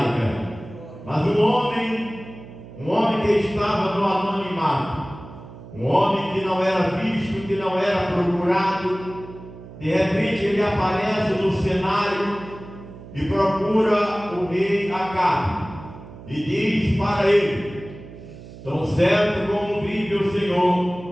Mas um homem que estava no anonimato, um homem que não era visto, que não era procurado, de repente ele aparece no cenário e procura o rei Acabe e diz para ele: tão certo como vive o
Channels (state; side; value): noise; right; hum, 16 dB below the sound